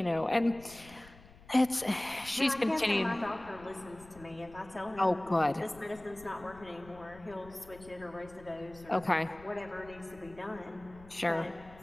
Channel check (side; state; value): left; noise; rumble, 21 dB below the sound